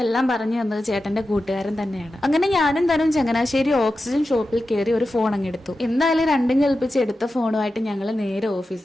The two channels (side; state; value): both; normal; correlation 0.92